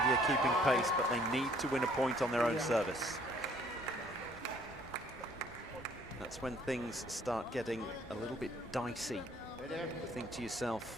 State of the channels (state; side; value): normal; both; correlation 0.60